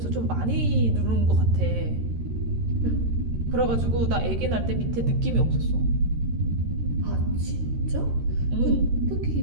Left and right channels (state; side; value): late; left; 13 ms